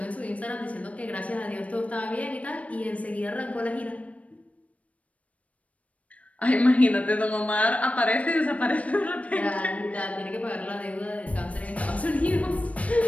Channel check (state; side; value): late; right; 0.066 ms